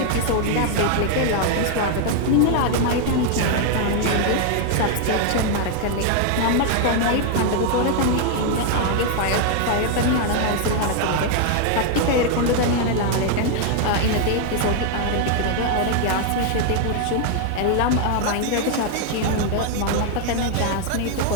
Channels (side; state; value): both; different; correlation 0.00